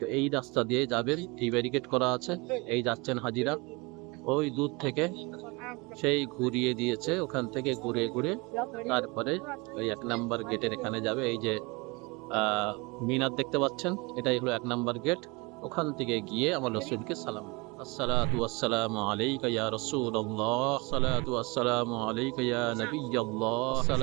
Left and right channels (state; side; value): quieter; left; 26.6 dB